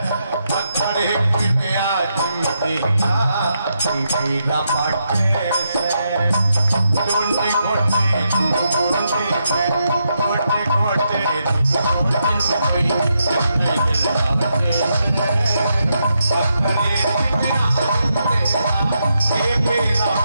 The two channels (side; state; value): both; inverted; correlation -0.82